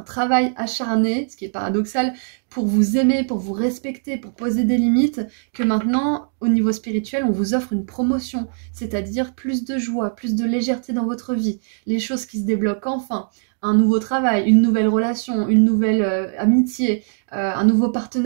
acharné, ce qui est paradoxal, pour vous aimer, pour vous respecter, pour poser des limites, que maintenant, au niveau spirituel, on vous offre une promotion, c'est-à-dire plus de joie, plus de légèreté dans votre vie, les choses qui se débloquent enfin, un nouveau travail, une nouvelle relation, une nouvelle amitié, un nouveau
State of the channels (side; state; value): left; silent; 64 dB below the other